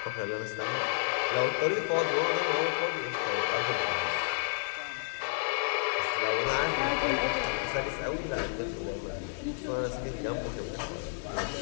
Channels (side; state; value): right; silent; digital silence